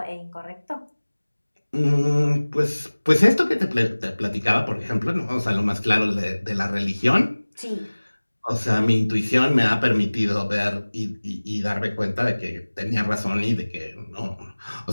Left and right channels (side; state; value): both; inverted; correlation -1.00